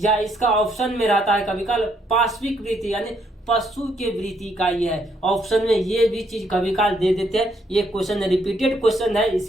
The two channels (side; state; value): both; normal; correlation 0.72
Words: इसका ऑप्शन में रहता है कभी काल पाश्विक वृत्ति यानी पशु के वृत्ति का ये है। ऑप्शन में ये भी चीज कभी काल दे देते हैं। ये क्वेश्चन रिपीटेड क्वेश्चन है,